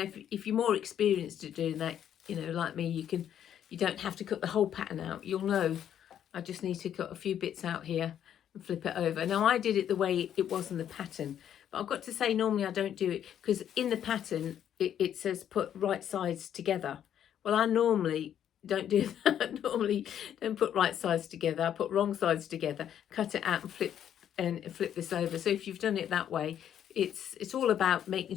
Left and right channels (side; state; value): right; quieter; 9.9 dB